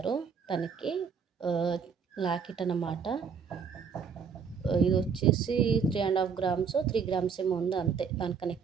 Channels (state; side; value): quieter; left; 6.3 dB